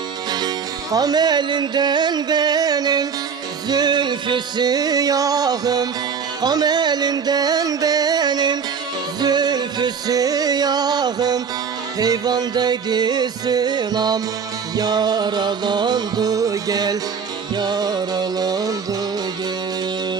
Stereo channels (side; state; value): left; quieter; 6.3 dB